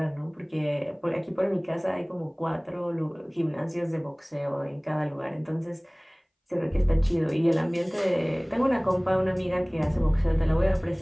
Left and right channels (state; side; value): identical; both; correlation 1.00